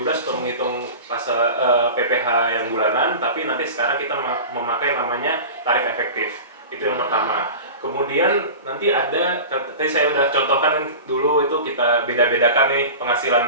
menghitung pasal PPh yang bulanan, tapi nanti sekarang kita memakai namanya tarif efektif. Itu yang pertama. Kemudian nanti ada, tadi saya udah contohkan dulu itu kita beda-bedakan nih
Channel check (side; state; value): both; inverted; correlation -0.33